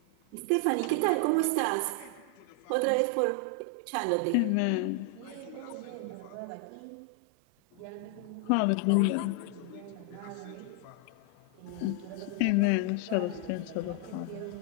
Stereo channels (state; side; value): different; both; correlation 0.00